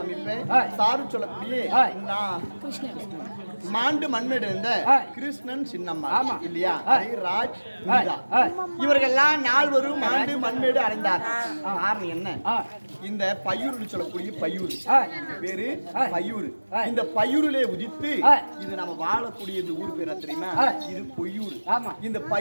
சாரு சொல்லக்கூடிய மாண்டு மண்ணிருந்த கிருஷ்ணன் சின்னம்மா இல்லையா? ராஜ் இவர்கள்லாம் நால்வரும் மாண்டு மண்மேடு அடைந்தார். காரணம் என்ன? இந்த பையூர் சொல்லக்கூடிய பையூர் பேரு பையூர். இந்த பையூரிலே உதித்து இது நம்ம வாழக்கூடிய இந்த ஊர் பேர தெரியுமா? இது பொய்யூர். இந்த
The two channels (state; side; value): inverted; both; correlation -1.00